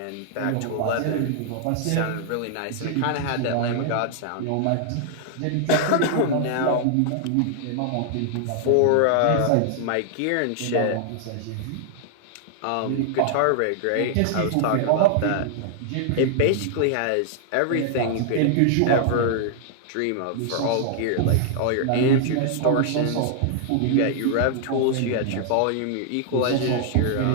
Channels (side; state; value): both; different; correlation -0.01